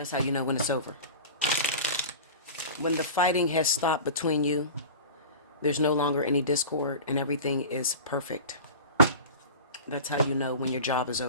how you know when it's over. When the fighting has stopped between you, there's no longer any discord and everything is perfect. That's how you know when your job is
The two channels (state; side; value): inverted; both; correlation -0.34